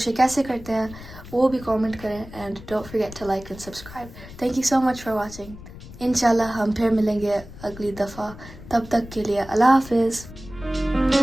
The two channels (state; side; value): noise; left; rumble, 16 dB below the sound